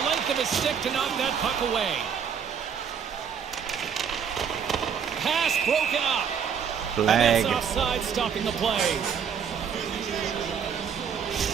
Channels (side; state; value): left; quieter; 7.3 dB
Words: length of his stick to knock that puck away. Pass broken up. Flag. And that's offside, stopping the play.